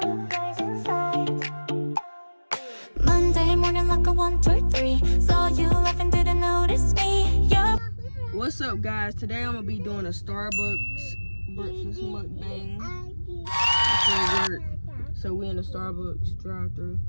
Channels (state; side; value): inverted; both; correlation -1.00